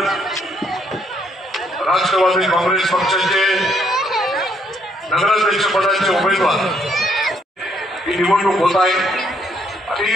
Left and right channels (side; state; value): both; normal; correlation 0.70